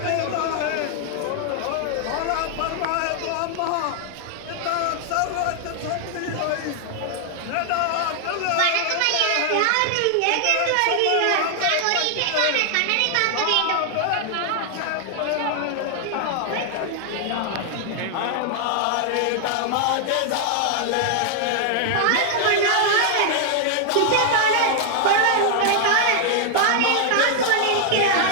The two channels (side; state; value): both; different; correlation 0.00